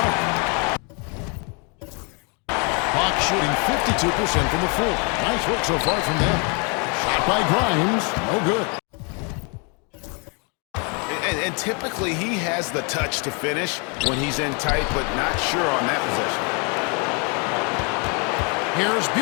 Hawks shooting 52% from the floor. Nice work so far from them. Shot by Grimes. No good. And typically he has the touch to finish when he's in tight, but not sure on that possession. Here's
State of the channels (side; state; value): right; quieter; 34.5 dB